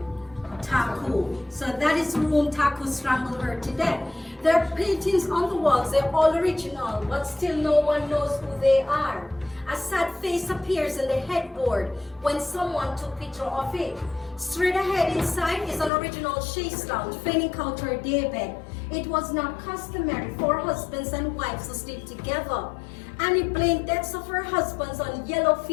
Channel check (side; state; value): right; drops out; at 15.9 s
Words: Taku. So that is room Taku strangled her to death. There are paintings on the walls, they're all original, but still no one knows who they are. A sad face appears in the headboard when someone took picture of it. Straight ahead inside is an original chaise lounge, feigning out her daybed. It was not customary for husbands and wives to sleep together. Annie blamed deaths of her husbands on yellow